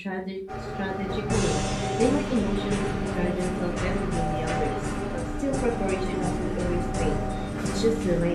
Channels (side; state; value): both; identical; correlation 1.00